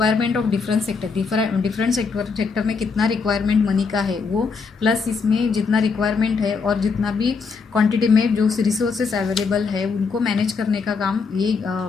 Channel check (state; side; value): quieter; right; 5.0 dB